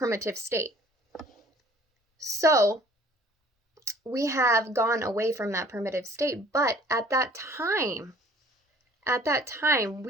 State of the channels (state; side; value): normal; both; correlation 0.53